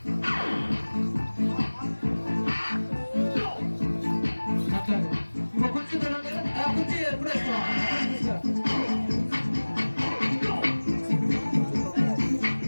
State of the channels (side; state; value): both; inverted; correlation -1.00